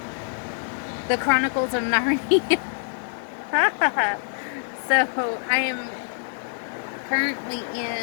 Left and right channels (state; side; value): silent; right; 62 dB below the other